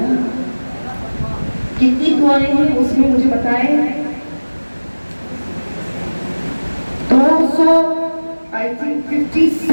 کتنی دعائیں ہیں اس میں مجھے بتائیں؟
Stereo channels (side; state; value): both; inverted; correlation -1.00